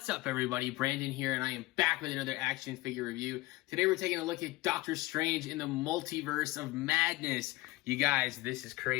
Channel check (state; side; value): quieter; right; 19.6 dB